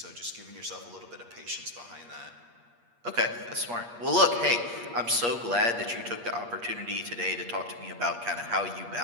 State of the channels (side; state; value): left; late; 8.5 ms